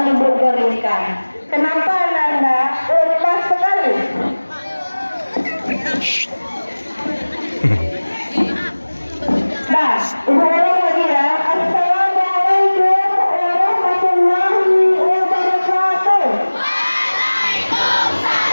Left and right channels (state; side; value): inverted; both; correlation -1.00